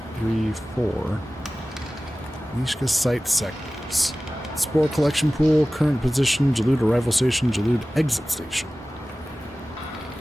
3, 4. Neyyah site sectors. Spore collection pool, current position, Jalud arrival station, Jalud exit station.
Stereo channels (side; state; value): both; normal; correlation 0.97